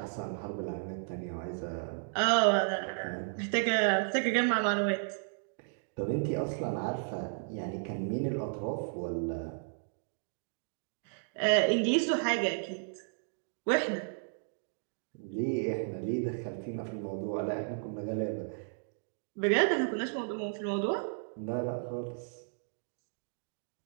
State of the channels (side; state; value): left; silent; digital silence